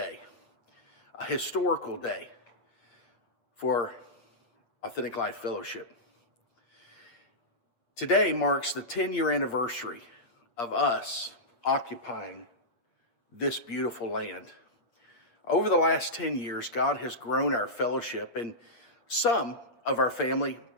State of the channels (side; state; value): right; late; 8.6 ms